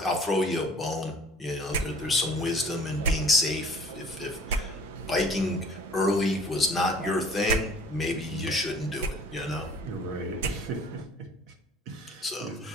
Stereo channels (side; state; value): both; normal; correlation 0.51